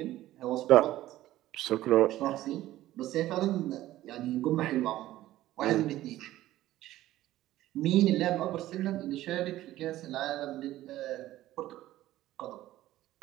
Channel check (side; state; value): left; quieter; 14.9 dB